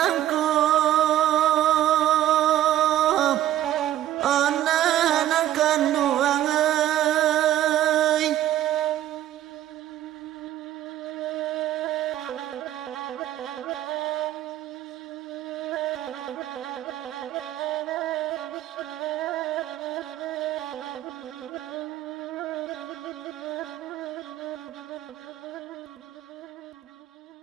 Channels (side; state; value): left; quieter; 12.8 dB